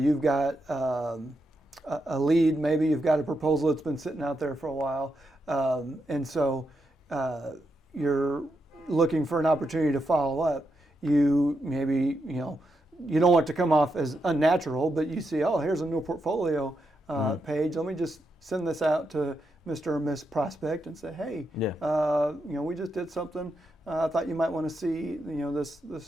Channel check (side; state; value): both; normal; correlation 0.84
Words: got a lead, maybe you've got a proposal that's been sitting out there for a while. And so you're looking for an opportunity to follow up. You maybe, you don't want to come off as unnatural, but you see, oh, here's a new portfolio page. Let me just send this out to Mr. or Miss Prospect and say, hey, we just did something. I thought you might want to see,